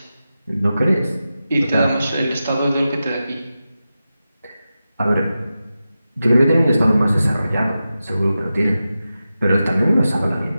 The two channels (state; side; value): inverted; both; correlation -0.92